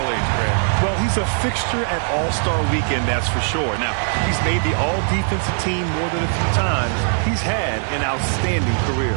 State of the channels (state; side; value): silent; left; 66 dB below the other